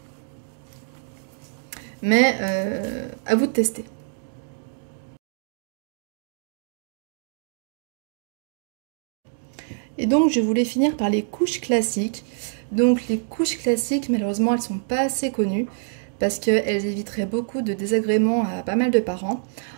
Mais à vous de tester. Et donc je voulais finir par les couches classiques. Donc les couches classiques, malheureusement, elles sont pas assez connues parce qu'elles éviteraient beaucoup de désagréments à pas mal de parents.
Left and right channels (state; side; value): silent; left; digital silence